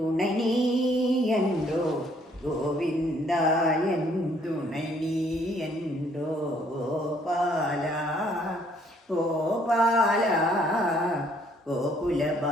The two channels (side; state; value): both; normal; correlation 0.64